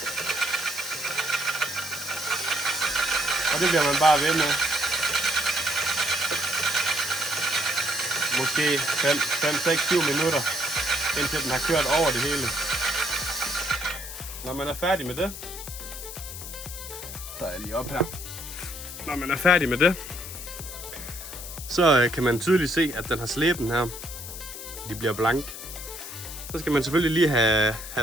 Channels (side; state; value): left; noise; hiss, 10 dB below the sound